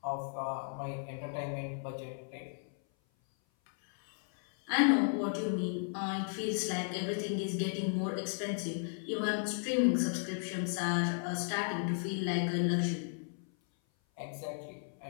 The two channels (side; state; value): right; silent; 55 dB below the other